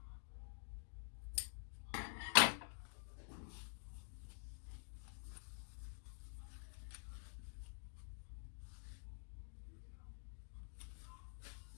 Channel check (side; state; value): right; silent; digital silence